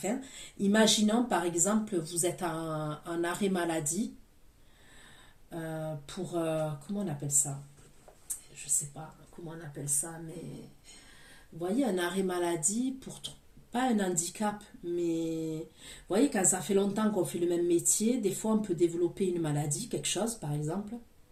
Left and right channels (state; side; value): identical; both; correlation 1.00